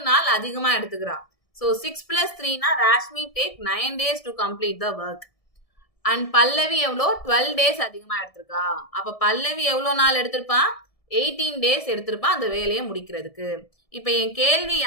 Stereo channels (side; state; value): right; late; 1.7 ms